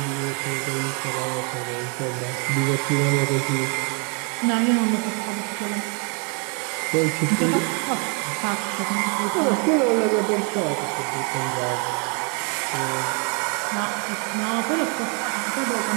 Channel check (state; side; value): quieter; left; 35.8 dB